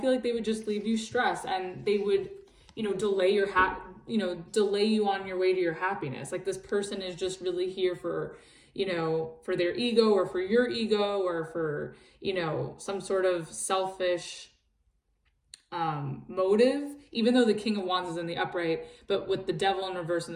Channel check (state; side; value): identical; both; correlation 1.00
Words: like they would just leave you stressed, and they would, delay you on your way to your happiness. Like, this person is just really here for, for their ego, or for your ego, or for, some sort of selfish motive, even though the King of Wands is in the upright. But with the Devil in reverse and